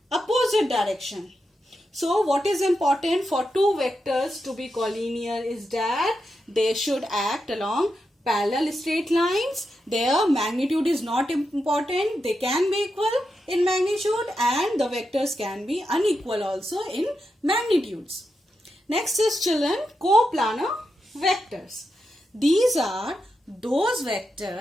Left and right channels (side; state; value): both; normal; correlation 0.86